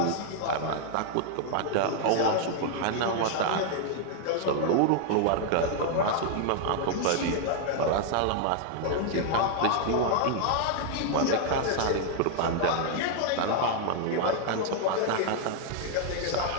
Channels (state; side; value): different; both; correlation 0.00